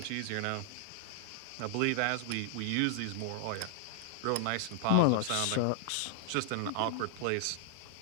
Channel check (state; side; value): different; both; correlation 0.00